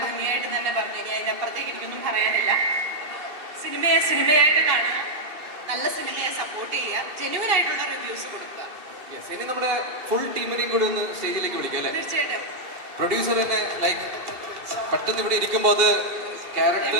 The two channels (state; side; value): late; left; 2.7 ms